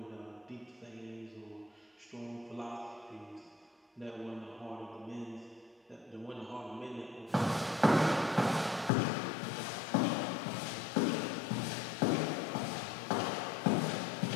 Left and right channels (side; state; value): right; drops out; at 8.9 s